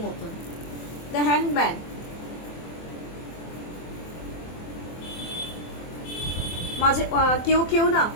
দ্য হ্যাংম্যান, মাঝে কেউ না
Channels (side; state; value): right; late; 24 ms